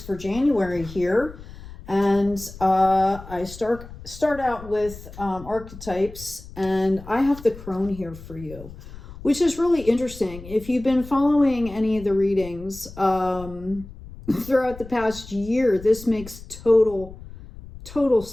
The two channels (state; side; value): noise; left; rumble, 16 dB below the sound